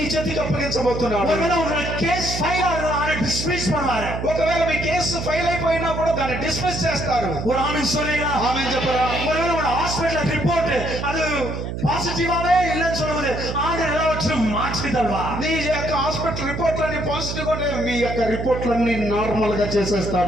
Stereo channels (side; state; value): right; noise; hum, 5 dB below the sound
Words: చేతికి అప్పగించబోతున్నాడు. ஒருவேளை உங்க கேஸ் ஃபைல் ஆகுறத டிஸ்மிஸ் பண்ணுவாரு. ఒకవేళ మీ కేసు ఫైల్ అయిపోయినా కూడా దాన్ని డిస్మిస్ చేస్తారు. ஒரு ஆமென் சொல்றீங்களா? ఆమేన్ చెప్పరా. ஒருவேளை உங்க ஹாஸ்பிடல் ரிப்போர்ட் அது பாசிட்டிவாவே இல்லைன்னு சொல்லும்போது ஆண்டவர் எல்லாவற்றையும் மாற்றி தருவார். నీ యొక్క హాస్పిటల్ రిపోర్ట్లన్నీ పాజిటివ్ ఉంటే మీ యొక్క రిపోర్ట్లన్నీ నార్మల్ గా